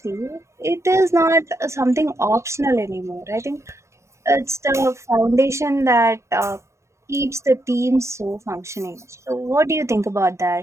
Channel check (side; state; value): left; late; 0.14 ms